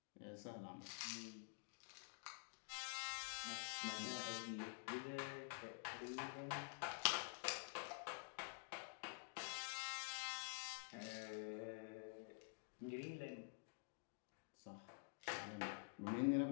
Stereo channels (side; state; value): right; quieter; 36.9 dB